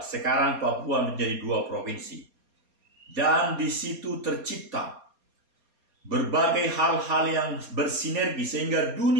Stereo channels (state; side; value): late; left; 4.3 ms